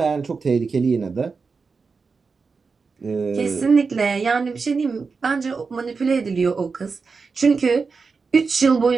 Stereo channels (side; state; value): left; quieter; 4.8 dB